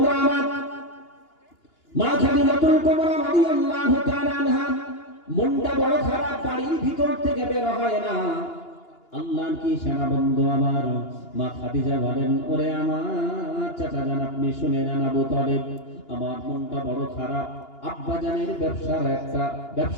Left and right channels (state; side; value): late; right; 2.8 ms